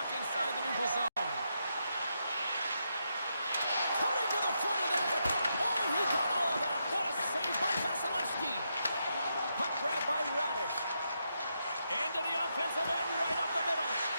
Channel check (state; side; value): inverted; both; correlation -0.82